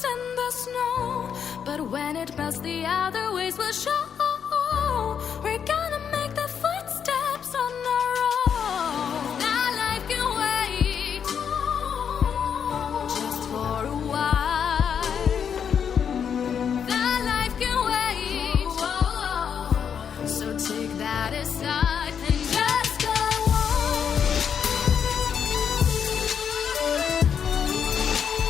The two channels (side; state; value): right; quieter; 7.6 dB